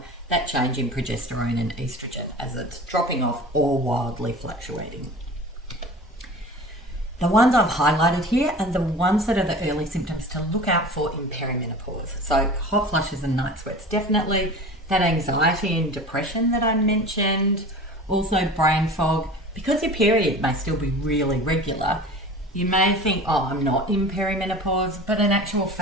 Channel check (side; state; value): both; normal; correlation 0.37